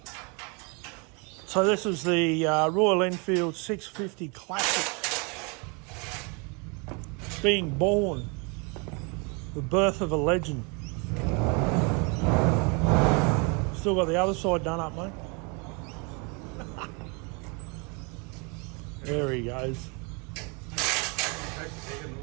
So this is the Royal Enfield 650 Classic. Being born. The birth of a legend. Still got the other side done up, mate. There he goes.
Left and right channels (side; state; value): left; quieter; 32.4 dB